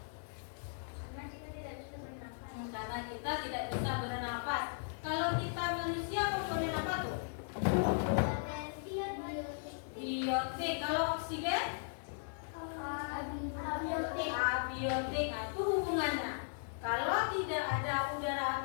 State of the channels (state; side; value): silent; right; 53 dB below the other